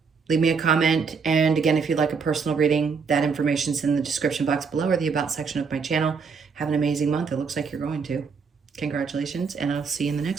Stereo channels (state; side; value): quieter; left; 5.4 dB